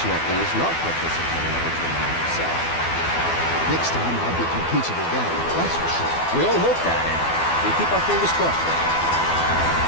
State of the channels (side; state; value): right; late; 12 ms